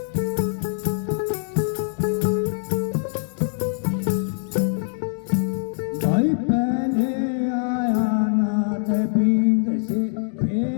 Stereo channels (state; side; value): silent; right; digital silence